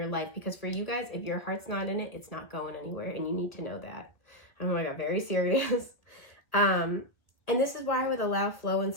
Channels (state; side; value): late; right; 1.4 ms